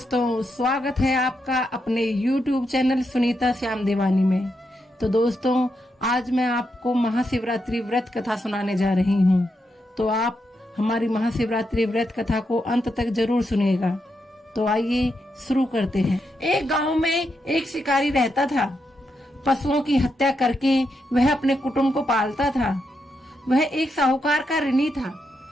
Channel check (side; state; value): both; normal; correlation 0.83